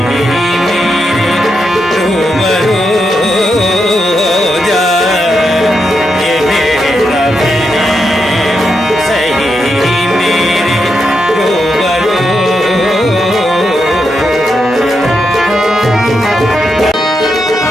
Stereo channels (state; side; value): normal; both; correlation 0.84